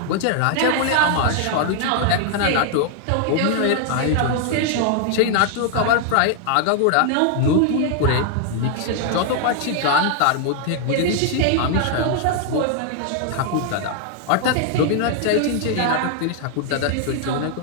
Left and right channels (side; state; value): both; different; correlation 0.00